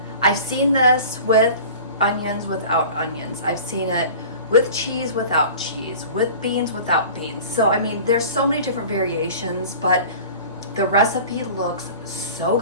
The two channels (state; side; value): inverted; both; correlation -0.40